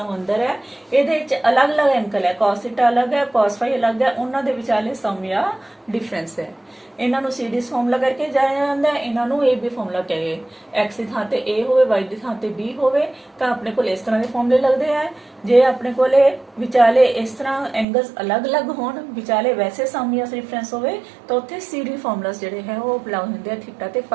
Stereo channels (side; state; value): left; drops out; at 17.9 s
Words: ਅੰਦਰ ਹੈ ਇਹਦੇ ਵਿੱਚ ਅਲੱਗ-ਅਲੱਗ ਐਂਗਲ ਹੈ cos ਥੀਟਾ ਅਲੱਗ ਹੈ cos phi ਅਲੱਗ ਹੈ ਉਹਨਾਂ ਦੇ ਵਿਚਾਲੇ ਸਮ ਜਾਂ ਡਿਫਰੈਂਸ ਹੈ। ਇਹਨਾਂ ਨੂੰ ਸੀਰੀਜ਼ ਫਾਰਮੂਲਾ ਕਰਕੇ ਜਾਣਿਆ ਜਾਂਦਾ ਹੈ ਇਹਨਾਂ ਨੂੰ AB ਫਾਰਮੂਲਾ ਕਹੇ x ਦੀ ਥਾਂ ਤੇ A ਹੋਵੇ y ਦੀ ਥਾਂ ਤੇ B ਹੋਵੇ ਤਾਂ ਆਪਣੇ ਕੋਲ ਇਸ ਤਰ੍ਹਾਂ ਦੇ ਫਾਰਮੂਲੇ ਲੱਗਦੇ ਆ। ਜੇ ਆਪਣੇ ਕੋਲੇ ਵਿਚਾਲੇ ਇਸ ਤਰ੍ਹਾਂ ਐਂਗਲਸ ਅਲੱਗ-ਅਲੱਗ ਹੋਣ ਵਿਚਾਲੇ ਵੈਸੇ ਸਮ ਜਾਂ ਡਿਫਰੈਂਸ ਹੋਵੇ ਤਾਂ ਉੱਥੇ CD ਫਾਰਮੂਲਾਸ ਜਿਹੜੇ ਹੈ ਉਹ ਅਪਲਾਈ ਹੁੰਦੇ ਆ ਥੀਟਾ ਤੇ